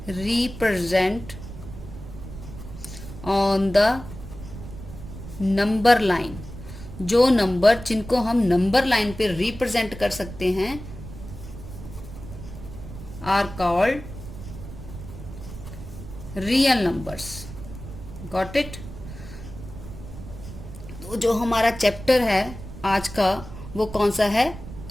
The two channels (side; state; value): right; noise; rumble, 12 dB below the sound